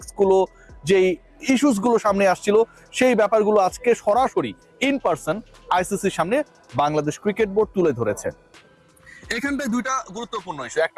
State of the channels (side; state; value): both; identical; correlation 1.00